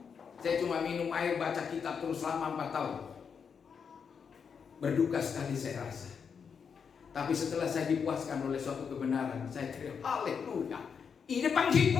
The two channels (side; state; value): right; quieter; 6.5 dB